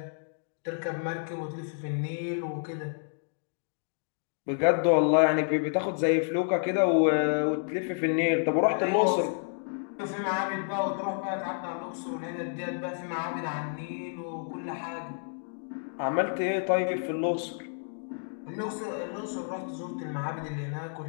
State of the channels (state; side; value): silent; right; digital silence